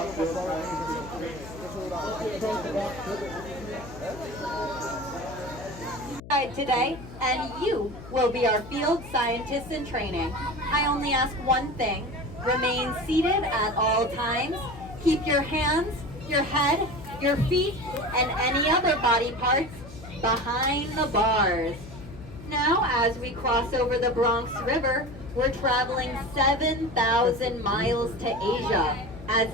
your today, and you will be our field scientists in training. I only ask one thing: remain seated at all times. Keep your hands, your head, your feet, and any other body parts behind the bars. Now, as we cross over the Bronx River, we're traveling 7,000 miles to Asia, as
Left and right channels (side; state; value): left; noise; hum, 15 dB below the sound